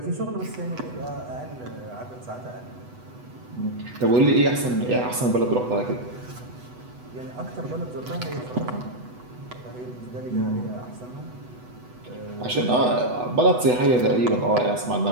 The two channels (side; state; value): left; late; 8.1 ms